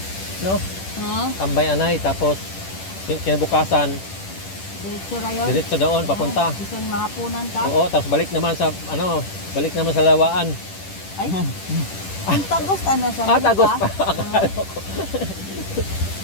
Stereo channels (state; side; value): late; right; 10 ms